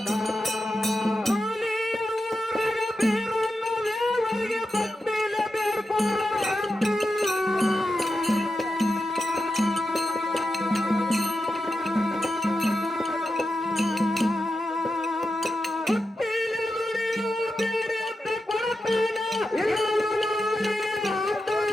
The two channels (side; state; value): both; normal; correlation 0.89